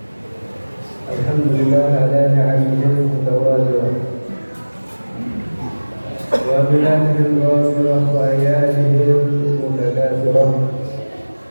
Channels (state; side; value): inverted; both; correlation -1.00